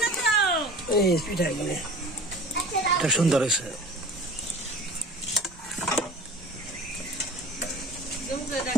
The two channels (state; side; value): normal; both; correlation 0.40